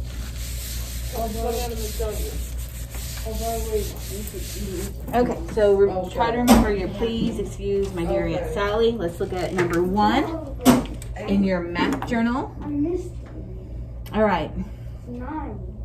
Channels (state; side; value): identical; both; correlation 1.00